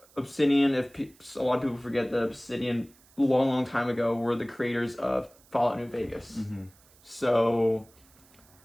Obsidian, a lot of people forget that Obsidian, long time ago, were the creators of Fallout New Vegas. So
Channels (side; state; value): right; noise; hiss, 28 dB below the sound